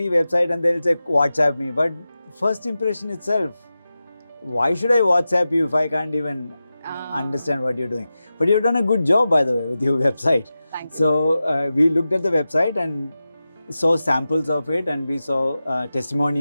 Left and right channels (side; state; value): both; inverted; correlation -0.93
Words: website and they'll say WhatsApp me, but first impression itself, why should I WhatsApp you if I can't even understand what you're doing? But you've done a good job, by the way, with your website. Thank you. So we looked at the website and saw samples of it, and we saw